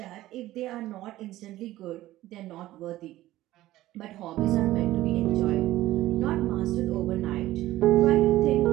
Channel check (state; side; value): quieter; left; 15.6 dB